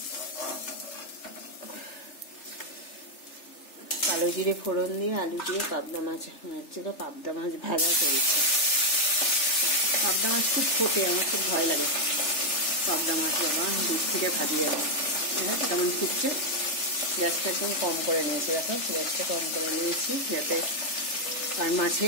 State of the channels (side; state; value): right; late; 3.4 ms